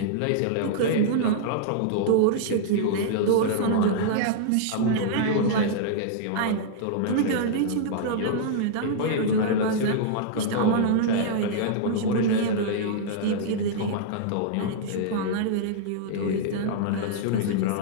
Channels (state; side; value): different; both; correlation -0.02